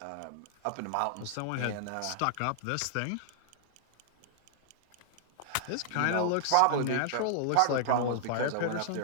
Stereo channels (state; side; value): different; both; correlation -0.01